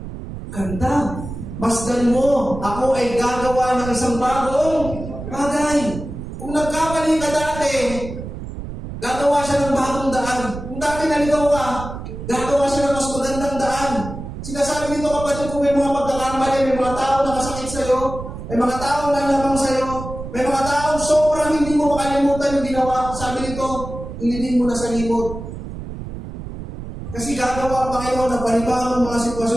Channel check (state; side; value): noise; right; rumble, 9 dB below the sound